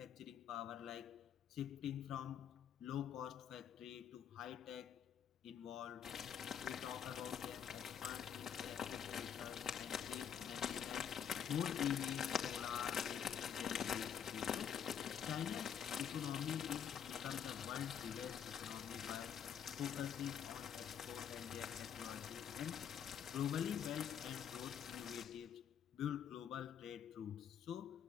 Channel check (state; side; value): quieter; right; 8.5 dB